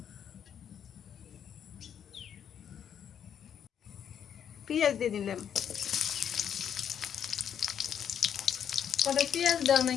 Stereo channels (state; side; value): quieter; right; 8.7 dB